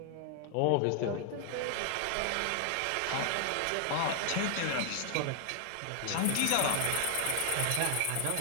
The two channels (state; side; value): different; both; correlation 0.00